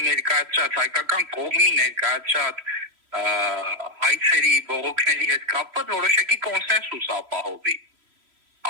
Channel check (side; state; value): left; late; 3.0 ms